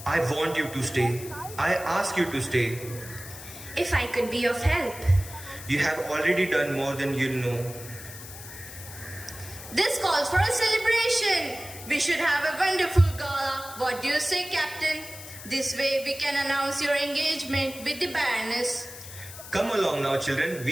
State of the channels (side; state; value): left; noise; hiss, 14 dB below the sound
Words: I want you to stay. I ask you to stay. If I could be of help. You have already done more than you know. This calls for a celebration. We should have a wonderful gala. What do you say, Captain? This way we can announce your engagement with the Baroness. Come along now, children.